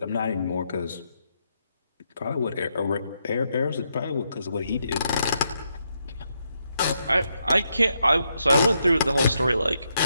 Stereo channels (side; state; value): both; inverted; correlation -0.79